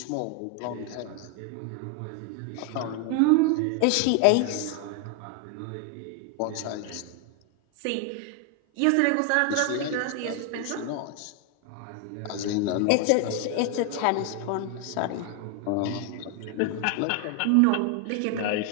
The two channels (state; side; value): different; both; correlation 0.01